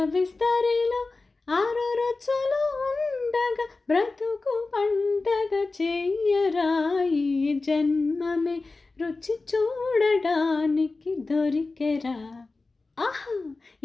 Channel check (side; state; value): right; quieter; 3.6 dB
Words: విస్తరిలో 6 రుచులు ఉండగా బ్రతుకు పండగ చెయ్యరా, ఈ జన్మమే రుచి చూడడానికి దొరికెరా, ఆహా